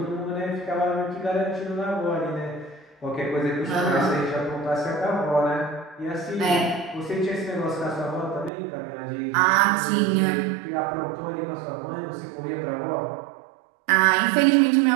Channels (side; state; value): left; drops out; at 8.5 s